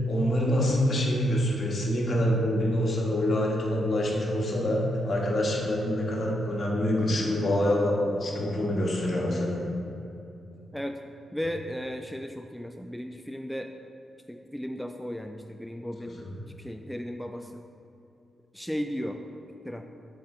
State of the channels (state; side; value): normal; both; correlation 0.80